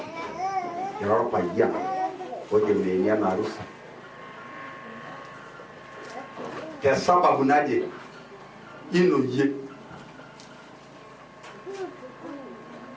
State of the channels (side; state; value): both; identical; correlation 1.00